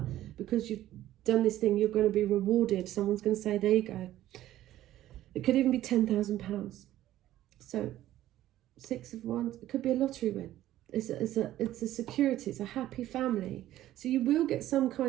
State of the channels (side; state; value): left; quieter; 13.8 dB